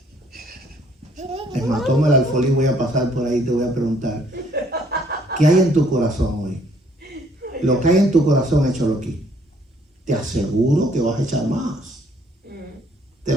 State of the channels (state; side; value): normal; both; correlation 0.63